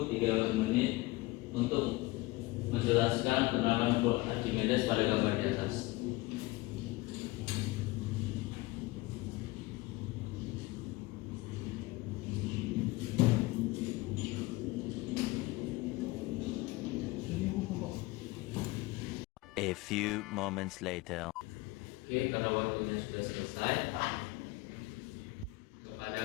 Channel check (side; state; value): right; quieter; 20.8 dB